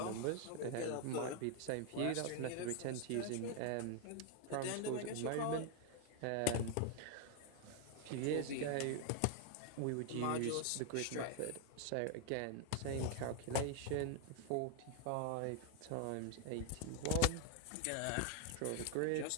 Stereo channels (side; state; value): both; different; correlation 0.00